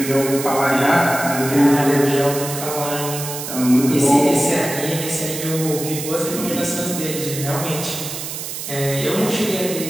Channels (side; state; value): right; noise; hiss, 7 dB below the sound